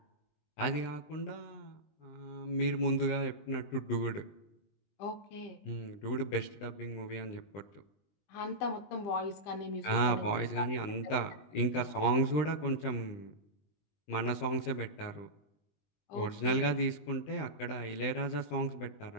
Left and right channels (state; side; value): late; right; 20 ms